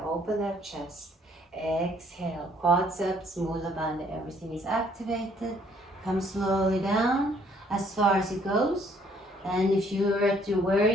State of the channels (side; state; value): both; normal; correlation 0.63